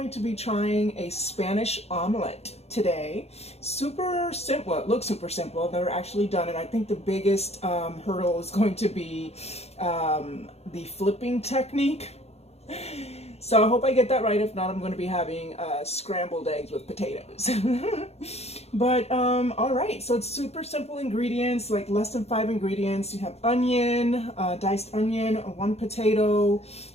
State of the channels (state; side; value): late; right; 0.30 ms